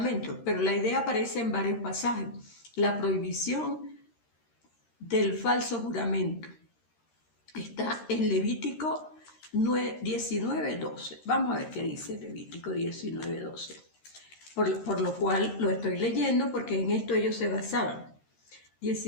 pero la idea aparece en varios pasajes. La prohibición del falso juramento está en Levítico 19:12. Vamos a ver qué dice Levítico 19:12. Por lo cual lo estoy leyendo porque en esto ellos se basaban.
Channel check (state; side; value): late; right; 13 ms